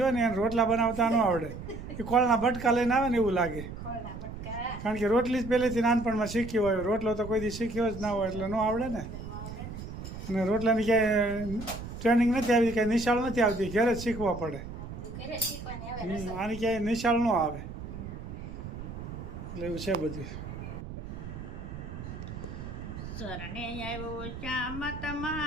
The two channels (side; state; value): right; noise; rumble, 10 dB below the sound